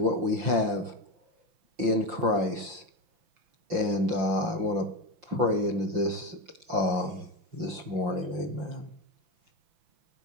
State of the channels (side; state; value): left; late; 5.7 ms